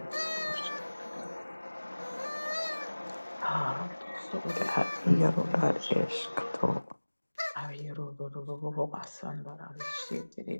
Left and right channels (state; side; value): inverted; both; correlation -1.00